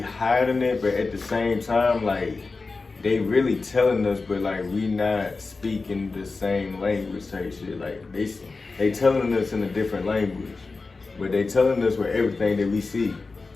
it, but at the same time, like they really telling us, but like we not speaking the same language type shit. Like they telling us in a different language, but they telling us with everything that we see.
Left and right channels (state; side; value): quieter; right; 3.9 dB